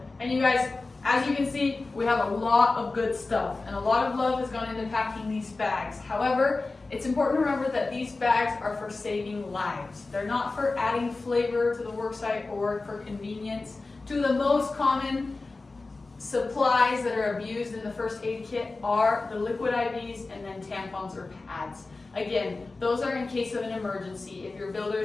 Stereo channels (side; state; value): right; quieter; 3.5 dB